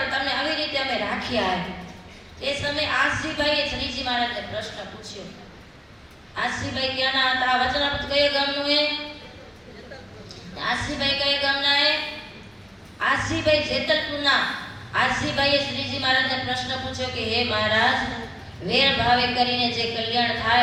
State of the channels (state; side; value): identical; both; correlation 1.00